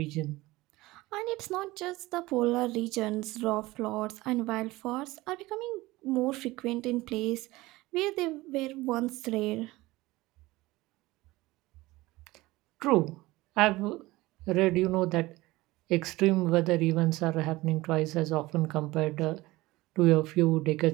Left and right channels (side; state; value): left; quieter; 19.7 dB